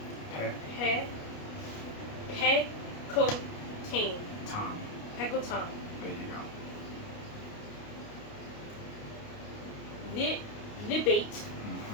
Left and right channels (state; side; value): late; right; 29 ms